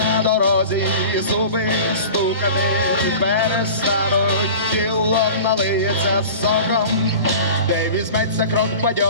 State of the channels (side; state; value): both; inverted; correlation -0.38